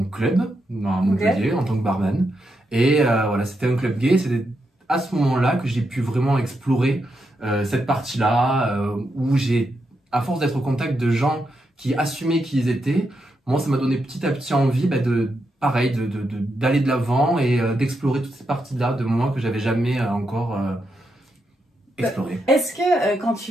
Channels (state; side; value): normal; both; correlation 0.83